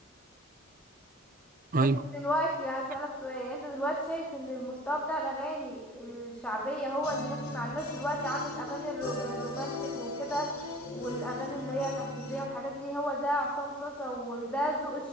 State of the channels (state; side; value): normal; both; correlation 0.46